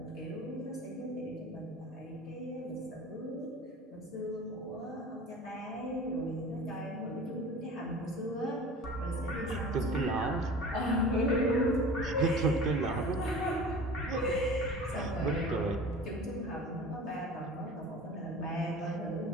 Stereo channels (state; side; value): normal; both; correlation 0.39